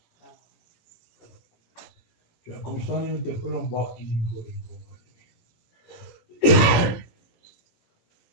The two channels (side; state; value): right; late; 18 ms